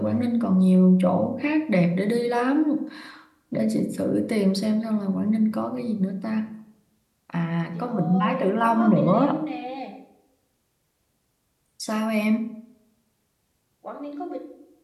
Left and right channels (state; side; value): identical; both; correlation 1.00